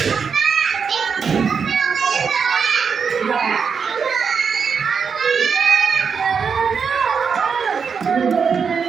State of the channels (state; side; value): quieter; left; 6.1 dB